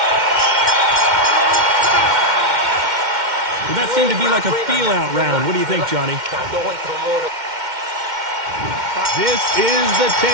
Well, that seemed to be like a feel-out round. What do you think, Johnny? This is the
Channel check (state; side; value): late; left; 2.1 ms